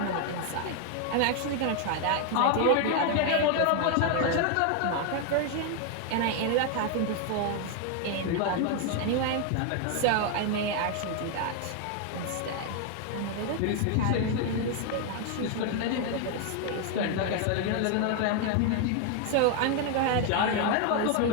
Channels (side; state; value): both; different; correlation 0.01